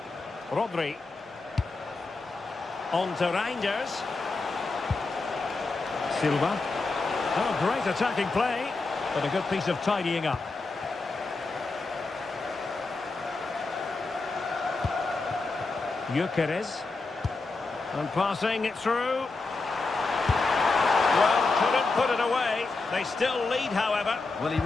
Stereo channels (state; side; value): quieter; right; 3.7 dB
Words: Rodri. On to Reinders. Silva. Oh, great attacking play, but a good piece of tidying up. Gyökeres. And passing it through. Well, couldn't put it away. They still lead, however. Well, he